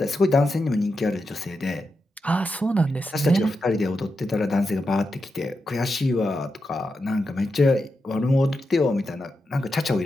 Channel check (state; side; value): normal; both; correlation 0.88